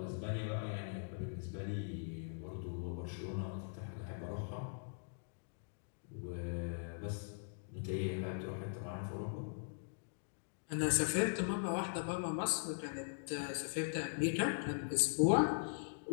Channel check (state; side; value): silent; right; digital silence